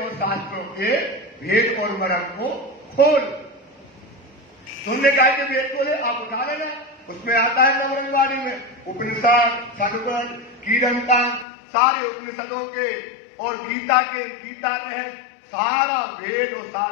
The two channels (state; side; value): drops out; right; at 11.5 s